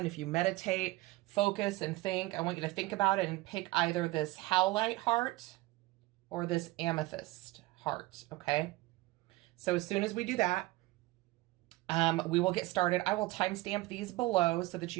If you meditate, focus, and think, I want you to think about it and pick either this Howlite heart or this Amethyst heart, okay? So as soon as we do that, we will get started. I will timestamp these below so that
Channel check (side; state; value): left; quieter; 20.0 dB